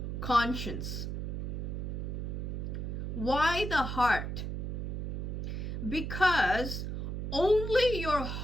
conscience. Why the heart? Because only your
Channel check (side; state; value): right; noise; hum, 3 dB below the sound